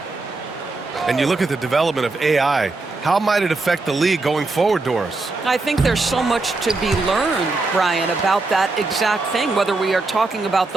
And you look at the development of AI. How might it affect the league going forward, Doris? I think there's so much to be learned, Brian, about that exact thing, whether we are talking about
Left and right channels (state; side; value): quieter; left; 3.4 dB